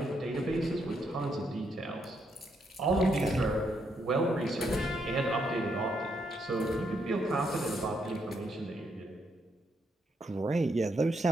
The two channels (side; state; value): both; normal; correlation 0.77